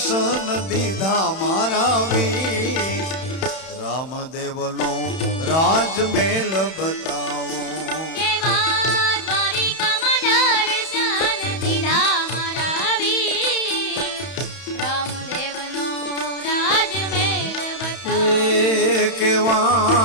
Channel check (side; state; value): right; late; 31 ms